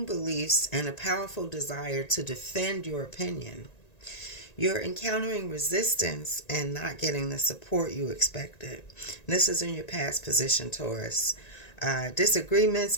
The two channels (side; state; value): right; late; 1.9 ms